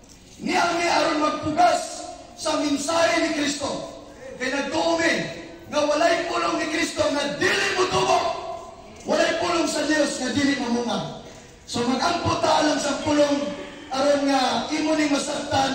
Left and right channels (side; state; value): both; identical; correlation 1.00